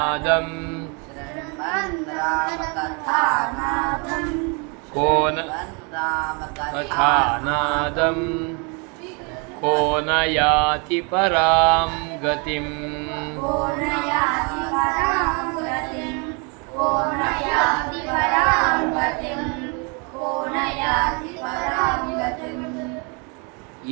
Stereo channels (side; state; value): left; quieter; 33.8 dB